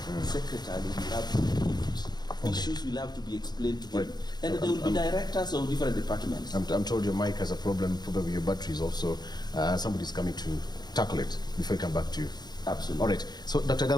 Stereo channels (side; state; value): right; late; 0.20 ms